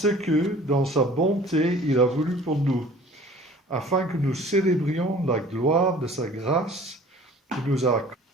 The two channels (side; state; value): both; normal; correlation 0.48